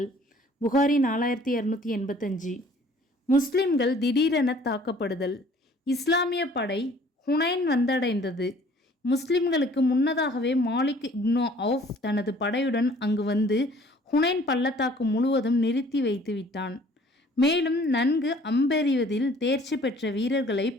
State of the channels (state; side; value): normal; both; correlation 0.55